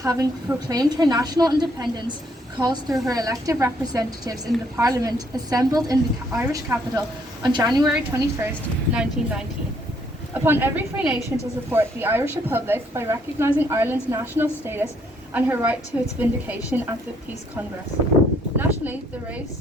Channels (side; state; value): both; normal; correlation 0.68